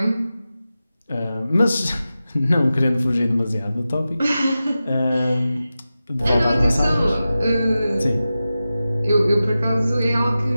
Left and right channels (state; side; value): inverted; both; correlation -0.94